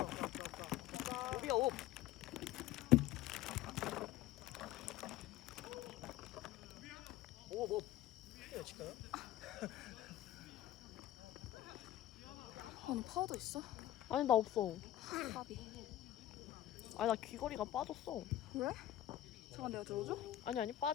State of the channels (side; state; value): right; quieter; 13.5 dB